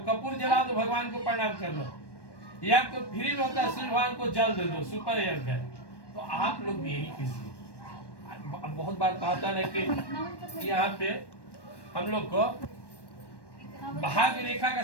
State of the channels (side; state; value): right; late; 1.1 ms